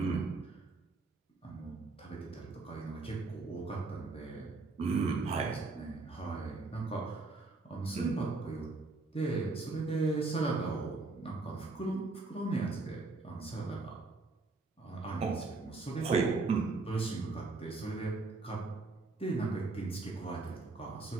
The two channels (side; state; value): left; quieter; 3.6 dB